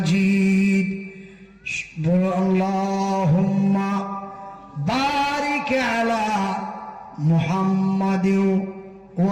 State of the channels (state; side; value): identical; both; correlation 1.00